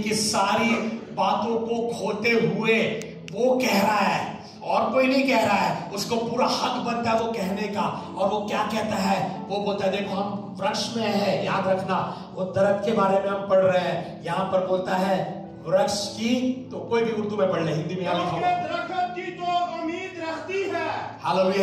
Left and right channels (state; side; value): identical; both; correlation 1.00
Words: सारी बातों को खोते हुए वो कह रहा है और कोई नहीं कह रहा है, उसको पूरा हक बनता है वो कहने का। और वो क्या कहता है, वो बोलता है देखो हम वृक्ष में है, याद रखना वो दरख्त के बारे में हम पढ़ रहे हैं। यहां पर बोलता है वृक्ष की, तो कोई भी उर्दू में पढ़ ले, हिंदी में यहां लिखा हुआ दरख्त की तो उम्मीद रहती है।